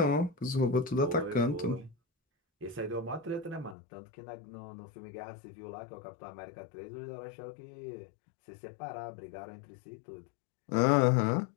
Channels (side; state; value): right; drops out; at 3.8 s